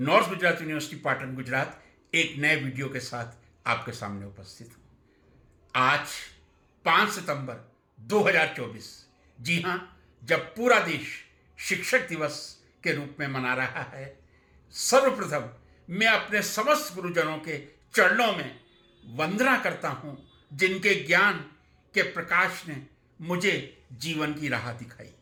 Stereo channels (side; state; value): both; identical; correlation 1.00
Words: Gujarat university Patan Gujarat, एक नए वीडियो के साथ आपके सामने उपस्थित हूं। आज 5 सितंबर 2024, जी हां, जब पूरा देश शिक्षक दिवस के रूप में मना रहा है, सर्वप्रथम मैं अपने समस्त गुरुजनों के चरणों में वंदना करता हूं, जिनके ज्ञान के प्रकाश ने मुझे जीवन की राह दिखाई।